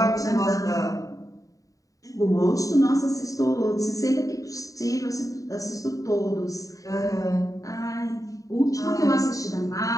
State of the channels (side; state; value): right; late; 0.16 ms